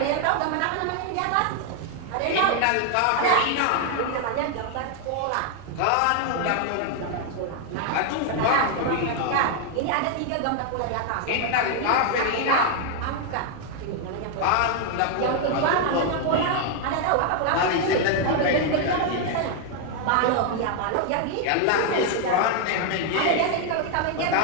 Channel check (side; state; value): both; different; correlation 0.00